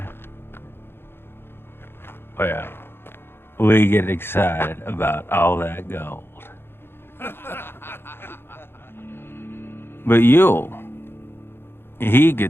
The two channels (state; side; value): late; right; 0.11 ms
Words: well, we get excited about all that gold. But Yule, he